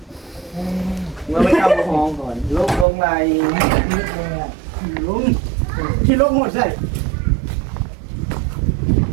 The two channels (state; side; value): drops out; left; at 2.9 s